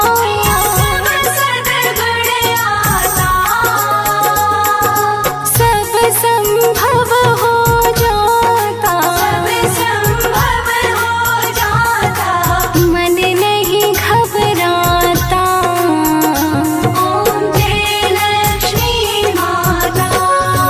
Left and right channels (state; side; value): identical; both; correlation 1.00